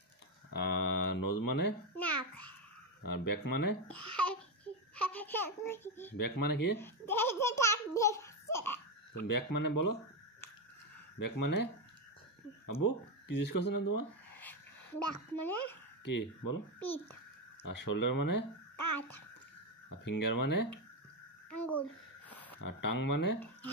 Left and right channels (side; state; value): both; normal; correlation 0.09